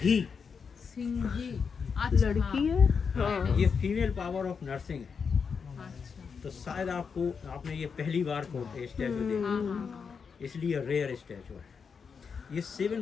सिंघी। अच्छा लड़की है? हाँ, ये फीमेल पावर ऑफ नर्सिंग है। अच्छा तो शायद आपको, आपने ये पहली बार को स्टैचू देखा, इसलिए रेयर स्टैचू है। ये 7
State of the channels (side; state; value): right; quieter; 5.9 dB